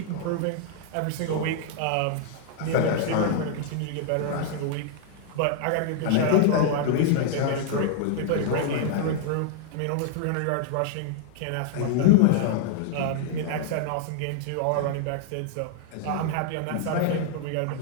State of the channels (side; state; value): both; different; correlation 0.00